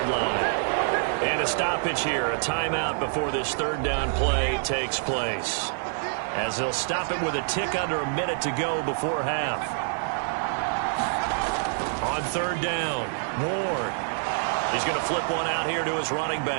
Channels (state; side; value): silent; left; digital silence